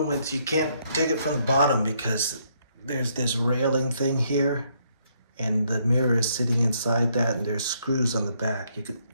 is you can't take it from the bottom because there's this railing thing here and the mirror is sitting inside that, and there's screws on the back. You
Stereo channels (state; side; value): inverted; both; correlation -0.72